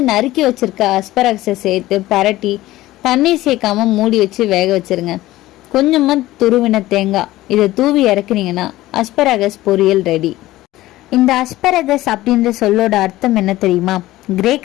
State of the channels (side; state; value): right; quieter; 16.6 dB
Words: நறுக்கி வச்சிருக்க அஸ்பராகஸை சேர்த்து பரட்டி தண்ணீர் சேர்க்காம மூடி வச்சு வேக வச்சிருங்க. கொஞ்சமா துருவின தேங்காய் இதை தூவி இறக்குனீங்கன்னா அஸ்பராகஸ் பொரியல் ரெடி. இந்த அஸ்பராகஸ் அப்படின்ற சொல்லோட அர்த்தம் என்ன தெரியுமா?